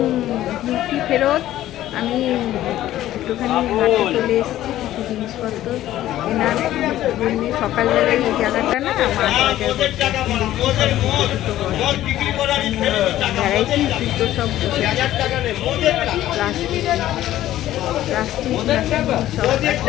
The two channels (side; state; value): right; quieter; 13.7 dB